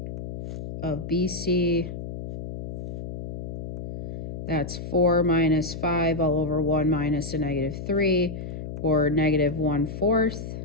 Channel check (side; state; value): left; noise; hum, 8 dB below the sound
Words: of BC. That's 4 minus 5 all over 1 minus a -3, or -1/4.